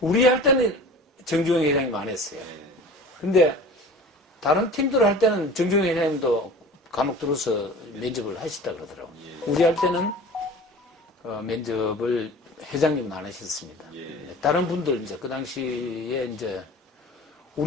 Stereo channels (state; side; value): normal; both; correlation 0.40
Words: 우리 할 때는 정주영 회장님 안 했어요. 근데 다른 팀들 할 때는 정주영 회장님도 간혹 들어서 면접을 하시다 그러더라고요. 우리 할 때는 면접을 회장님은 안 하셨습니다. 다른 분들 이제 그 당시에 이제